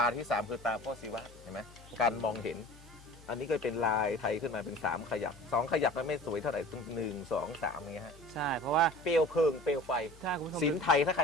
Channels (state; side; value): noise; left; hum, 21 dB below the sound